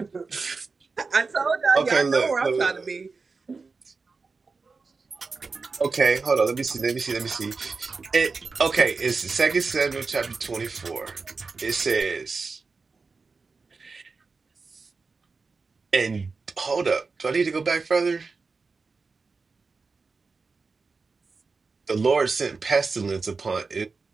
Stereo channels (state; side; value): quieter; left; 4.4 dB